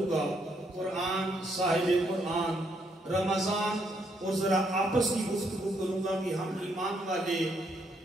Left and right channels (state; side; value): normal; both; correlation 0.74